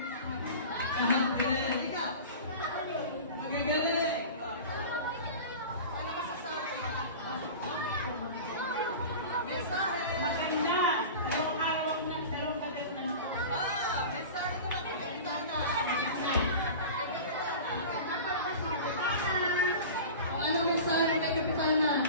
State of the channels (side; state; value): both; inverted; correlation -0.34